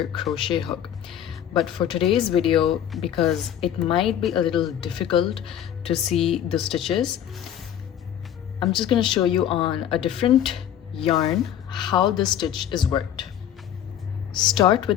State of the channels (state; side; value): quieter; right; 10.1 dB